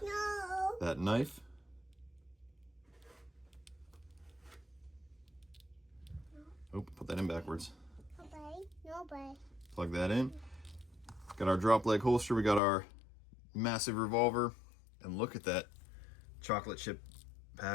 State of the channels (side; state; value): right; drops out; at 12.6 s